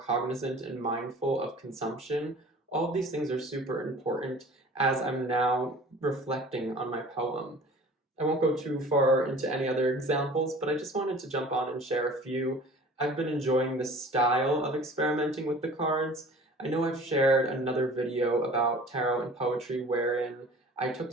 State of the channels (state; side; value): normal; both; correlation 0.45